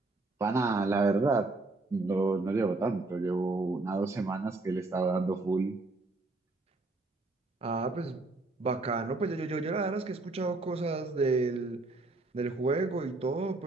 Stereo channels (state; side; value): quieter; left; 3.2 dB